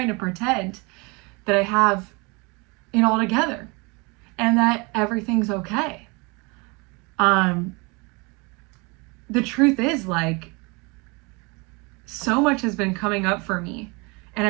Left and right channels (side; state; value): left; quieter; 28.7 dB